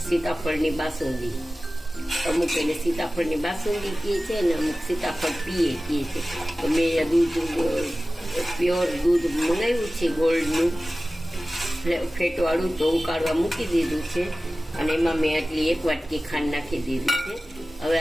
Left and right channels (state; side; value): normal; both; correlation 0.96